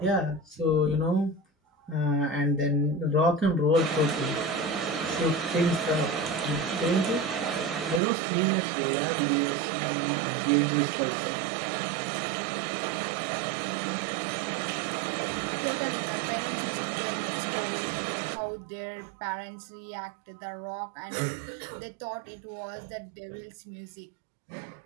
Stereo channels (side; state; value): left; drops out; at 8.0 s